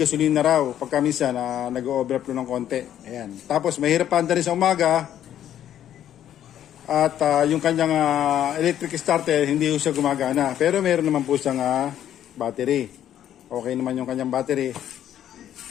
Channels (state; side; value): quieter; right; 10.9 dB